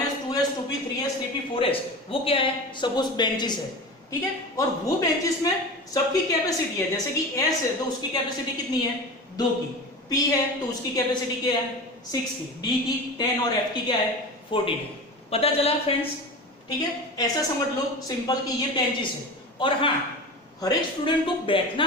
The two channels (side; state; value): both; normal; correlation 0.30